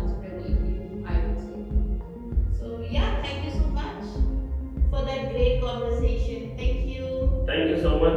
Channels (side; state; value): both; identical; correlation 1.00